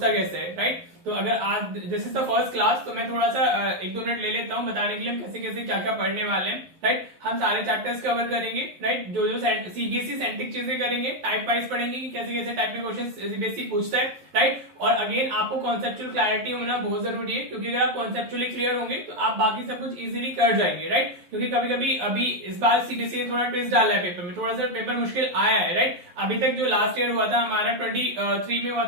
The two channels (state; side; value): late; left; 11 ms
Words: कैसे है। राइट, तो अगर आज this is the first class, तो मैं थोड़ा सा 1-2 मिनट ले लेता हूँ बताने के लिए हम कैसे कैसे क्या क्या पढ़ने वाले हैं। राइट, हम सारे चैप्टर्स कवर करेंगे। राइट, जो जो सीबीएसई सेंट्रिक चीजें करेंगे, टाइप वाइज पढ़ेंगे कि कैसे कैसे टाइप में क्वेश्चन सीबीएसई पूछता है। राइट, और अगेन आपको कॉन्सेप्चुअल क्लैरिटी होना बहुत जरूरी है, क्योंकि अगर आप कॉन्सेप्चुअली क्लियर होंगे तो आप बाकी सब कुछ इजीली कर जाएंगे। राइट, क्योंकि कभी कभी अभी इस बार सीबीएसई ने थोड़ा ट्विस्ट डाला है पेपर में, थोड़ा सा पेपर मुश्किल आया है। राइट, अभी तक जो लास्ट ईयर हुआ था हमारा 23 में हुआ